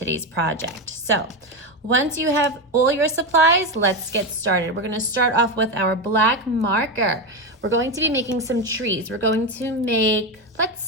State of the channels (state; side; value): normal; both; correlation 0.13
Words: project. So once you have all your supplies, let's get started. We're gonna start off with our black marker. We're going to be making some trees. We're going to make, let's